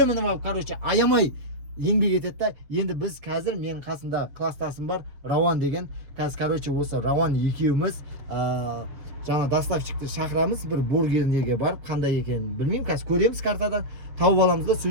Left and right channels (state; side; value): late; left; 7.4 ms